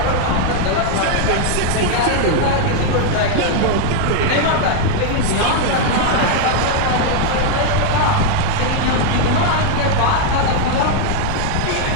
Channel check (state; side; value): different; both; correlation 0.00